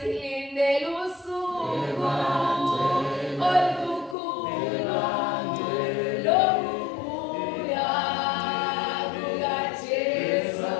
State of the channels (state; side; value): drops out; right; at 4.2 s